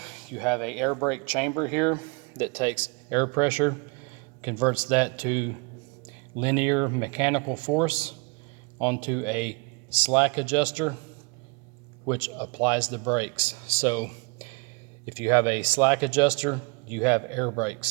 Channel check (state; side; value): quieter; left; 30.2 dB